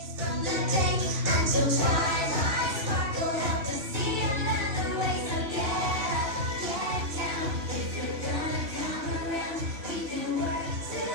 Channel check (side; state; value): left; late; 2.9 ms